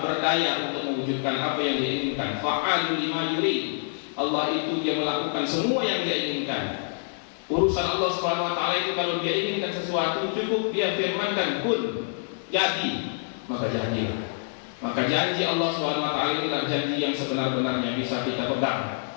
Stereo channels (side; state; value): right; silent; digital silence